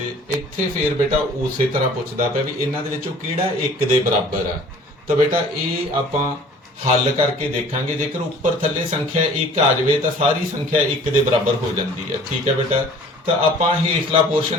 ਇੱਥੇ ਫੇਰ ਬੇਟਾ ਉਸੇ ਤਰ੍ਹਾਂ ਪੁੱਛਦਾ ਪਿਆ ਵੀ ਇਹਨਾਂ ਦੇ ਵਿੱਚੋਂ ਕਿਹੜਾ 1 ਦੇ ਬਰਾਬਰ ਆ। ਤਾਂ ਬੇਟਾ ਇਹ ਆਪਾਂ ਹੱਲ ਕਰਕੇ ਦੇਖਾਂਗੇ। ਜੇਕਰ ਉੱਪਰ ਥੱਲੇ ਸੰਖਿਆ 1 ਆ ਜਾਵੇ ਤਾਂ ਸਾਰੀ ਸੰਖਿਆ 1 ਦੇ ਬਰਾਬਰ ਹੋ ਜਾਂਦੀ ਹੈ। ਠੀਕ ਹੈ ਬੇਟਾ। ਤਾਂ ਆਪਾਂ ਹੇਠਲਾ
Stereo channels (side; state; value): both; normal; correlation 0.49